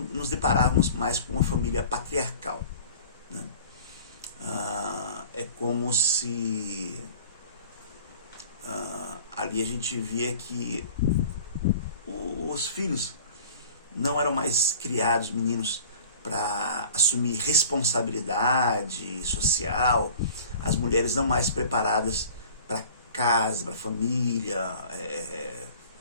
deparávamos mais com uma família patriarcal. É como se ali a gente via que os filhos não eram mais criados, meninos, para assumir responsabilidade social, as mulheres não mais preparadas para casa, para família,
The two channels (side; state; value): both; inverted; correlation -0.45